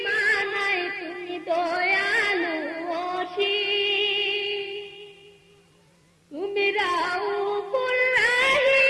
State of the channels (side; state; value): both; identical; correlation 1.00